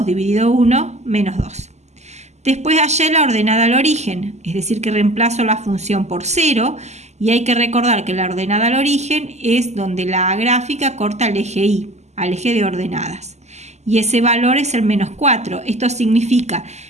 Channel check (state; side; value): late; left; 0.33 ms